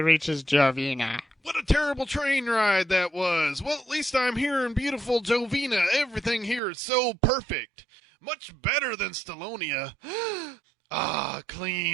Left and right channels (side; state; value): left; drops out; at 6.6 s